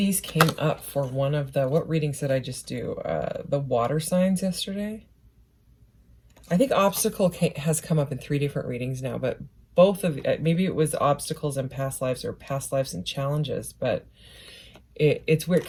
came up for one of the, what readings did I just do? The water signs yesterday. I think obstacle has come up in 3 different readings now, but both of, maybe it was obstacles in past lives or past lives and challenges, but it's weird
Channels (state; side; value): identical; both; correlation 1.00